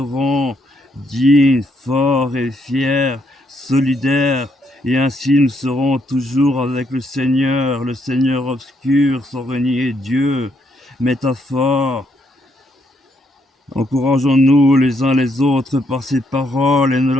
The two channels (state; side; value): normal; both; correlation 0.74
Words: dignes, forts et fiers, solidaires, et ainsi nous serons toujours avec le Seigneur obscur, sans renier Dieu. Métaphore. Encourageons-nous les uns les autres par ces paroles et ne